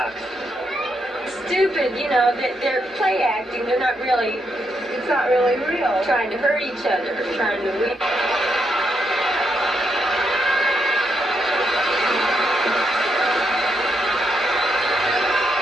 Stupid, you know, they're play acting. They're not really, it's not really real. Trying to hurt each other, trying to win.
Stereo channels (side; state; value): both; normal; correlation 0.80